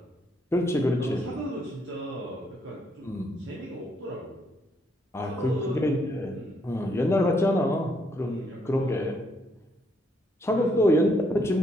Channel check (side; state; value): both; normal; correlation 0.73